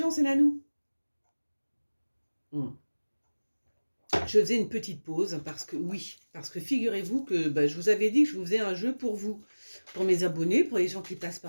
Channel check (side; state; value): both; inverted; correlation -1.00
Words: c'est Nanou. Hmm. Je faisais une petite pause parce que figurez-vous que je vous avais dit que je vous faisais un jeu pour vous, pour mes abonnés, pour les gens qui passent